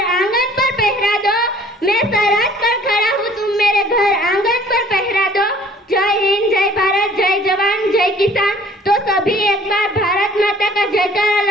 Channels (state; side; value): normal; both; correlation 0.53